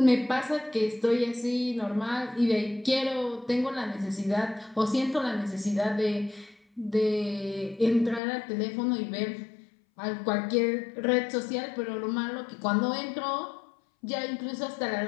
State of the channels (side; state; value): right; drops out; at 8.2 s